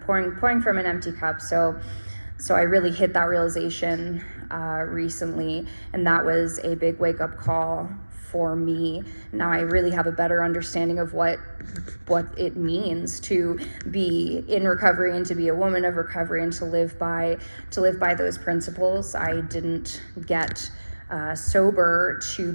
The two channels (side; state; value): both; inverted; correlation -1.00